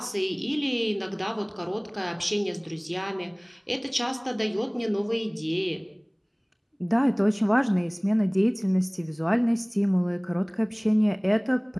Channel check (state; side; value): identical; both; correlation 1.00